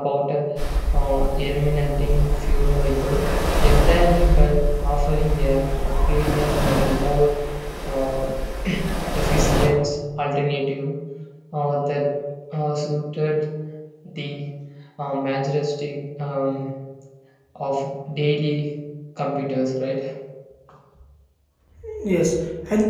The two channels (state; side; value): identical; both; correlation 1.00